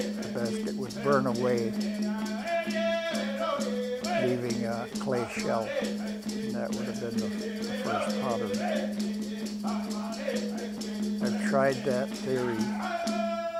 the basket would burn away, leaving a clay shell, and that would have been the first pottery. I've tried that theory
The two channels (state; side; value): identical; both; correlation 1.00